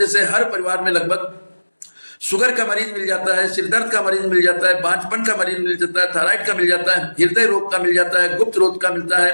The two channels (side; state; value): both; inverted; correlation -1.00